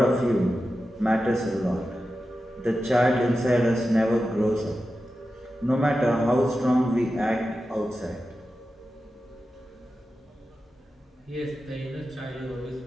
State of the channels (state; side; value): normal; both; correlation 0.92